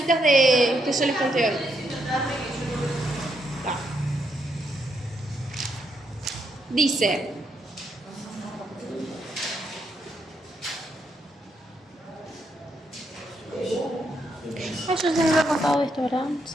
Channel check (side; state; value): both; normal; correlation 0.78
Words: que yo les conté hoy. Dice, yo se me había contado esto, ¿verdad?